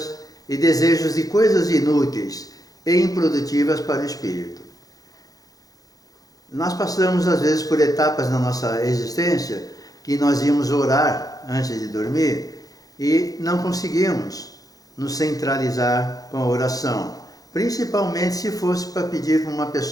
e desejos de coisas inúteis e improdutivas para o espírito. Nós passamos às vezes por etapas na nossa existência que nós íamos orar antes de dormir e não conseguimos nos centralizar com a oração. principalmente se fosse para pedir para uma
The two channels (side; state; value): right; late; 0.18 ms